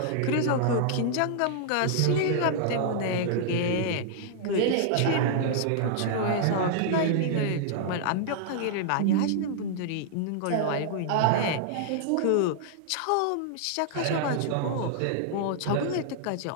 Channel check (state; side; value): different; both; correlation -0.01